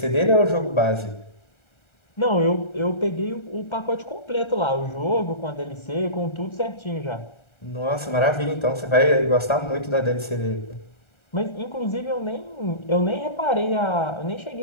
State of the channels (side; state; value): right; late; 1.3 ms